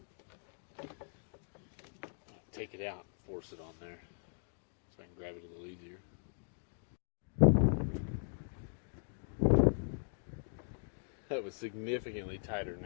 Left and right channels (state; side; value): silent; right; digital silence